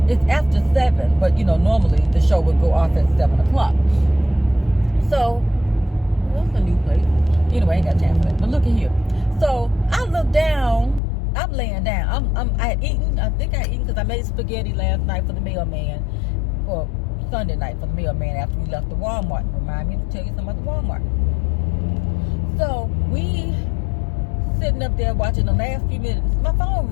it's after 7, but you know, normally the show would go off at 7 o'clock. So what's a new place? Anyway, I ain't got time for that. But look at here. So I look down, I'm laying down. I had eaten, I think I had eaten because I made spaghetti last night for the mailman, or Sunday night for the mailman after we left the Walmart. Remind me to tell you something about the Walmart. So we sitting up there watching the last few minutes. My phone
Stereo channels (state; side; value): drops out; right; at 11.0 s